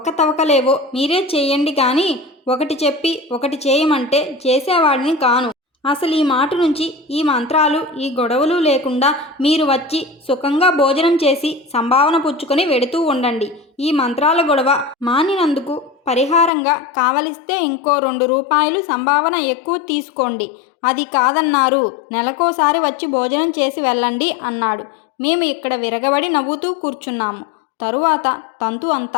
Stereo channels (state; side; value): drops out; right; at 16.5 s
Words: మీరే చేయండి కానీ ఒకటి చెప్పి ఒకటి చేయమంటే చేసేవాడిని కాను. అసలు ఈ మాట నుంచి ఈ మంత్రాలు ఈ గొడవలు లేకుండా మీరు వచ్చి సుఖంగా భోజనం చేసి సంభావన పుచ్చుకొని వెడుతూ ఉండండి. ఈ మంత్రాల గొడవ మానినందుకు పరిహారంగా కావలిస్తే ఇంకో 2 రూపాయలు సంభావన ఎక్కువ తీసుకోండి. అది కాదన్నారు, నెలకోసారి వచ్చి భోజనం చేసి వెళ్ళండి అన్నాడు. మేము ఇక్కడ విరగబడి నవ్వుతూ కూర్చున్నాము. తరువాత తంతు